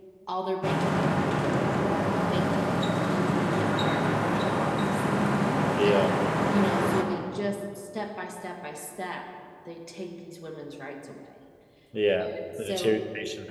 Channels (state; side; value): identical; both; correlation 1.00